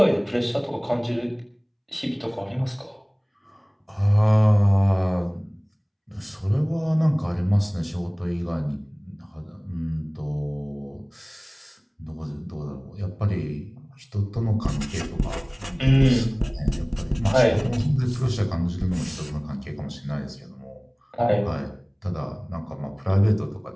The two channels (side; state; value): both; identical; correlation 1.00